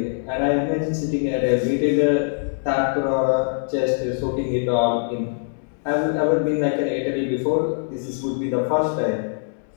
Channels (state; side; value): silent; right; digital silence